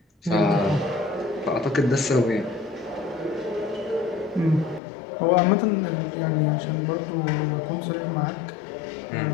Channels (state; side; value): drops out; right; at 4.8 s